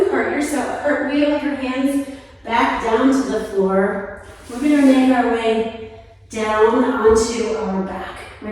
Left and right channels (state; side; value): identical; both; correlation 1.00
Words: cartwheel your hands back down to the floor. We're going to make our way down onto our back,